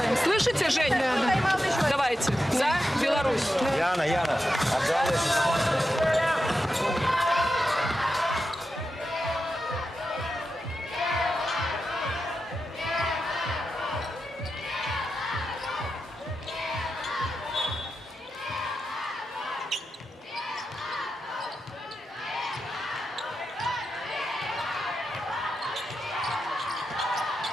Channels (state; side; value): normal; both; correlation 0.89